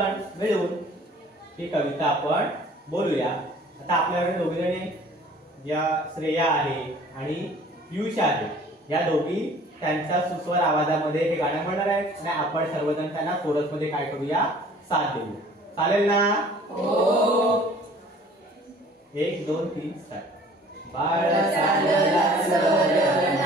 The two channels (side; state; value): both; normal; correlation 0.51